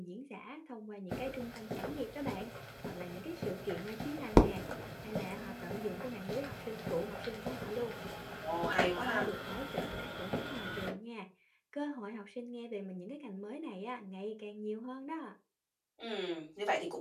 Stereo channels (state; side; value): identical; both; correlation 1.00